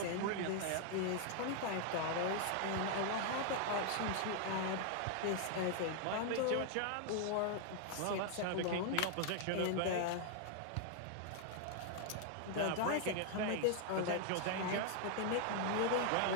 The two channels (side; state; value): both; different; correlation 0.00